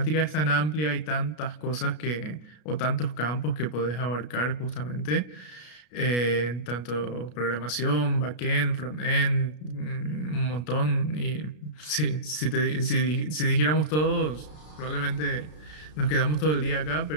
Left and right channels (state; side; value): late; right; 33 ms